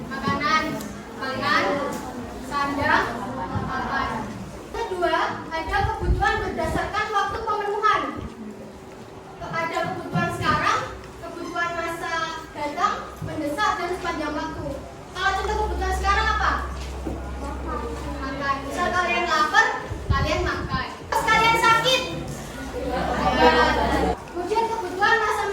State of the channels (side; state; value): both; identical; correlation 1.00